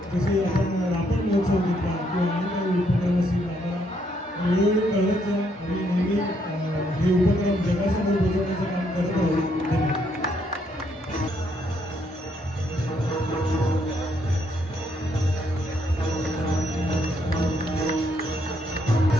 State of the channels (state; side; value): normal; both; correlation 0.72